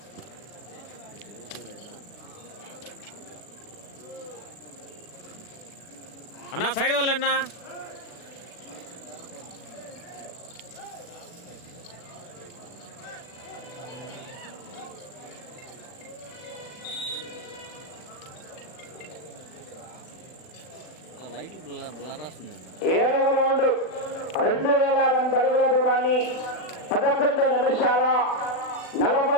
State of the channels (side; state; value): right; late; 40 ms